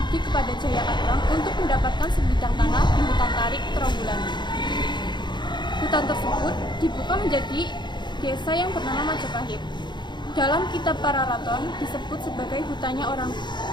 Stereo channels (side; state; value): right; late; 0.22 ms